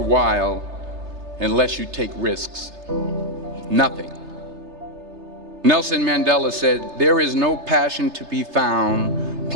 unless you take risks. Nothing. Nelson Mandela said, "There is no passion to be found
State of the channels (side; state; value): left; late; 3.3 ms